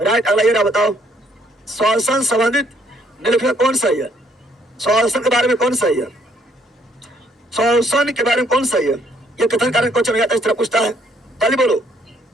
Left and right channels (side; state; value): both; normal; correlation 0.66